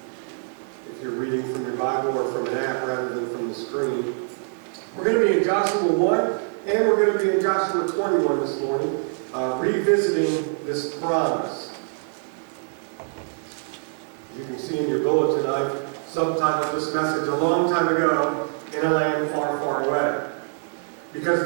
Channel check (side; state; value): left; silent; digital silence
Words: If you're reading from your Bible or from an app rather than from the screen. We're going to be in Joshua 1 and we're going to be in Joshua 21 this morning, revisiting this promise. You can see in your bulletin, I've subtitled this message a long time ago, in a land far, far away. Because